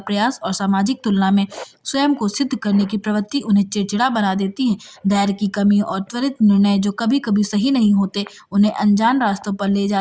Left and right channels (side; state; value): both; identical; correlation 1.00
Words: और सामाजिक तुलना में स्वयं को सिद्ध करने की प्रवृत्ति उन्हें चिड़चिड़ा बना देती है। धैर्य की कमी और त्वरित निर्णय जो कभी कभी सही नहीं होते, उन्हें अनजान रास्तों पर ले